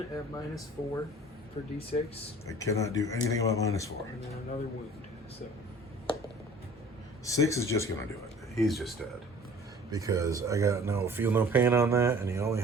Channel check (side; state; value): both; normal; correlation 0.48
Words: at -4 for D6. I cannot do anything about -4. And then another wound. So 6 is just gonna do it. He's just dead. Because I got feel no pain on that, and he only